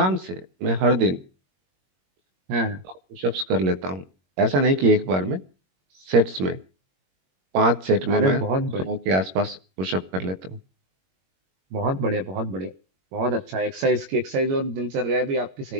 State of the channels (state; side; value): late; left; 21 ms